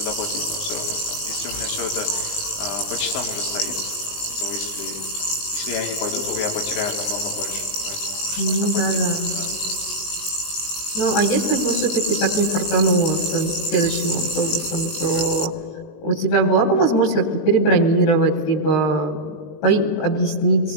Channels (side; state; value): right; late; 19 ms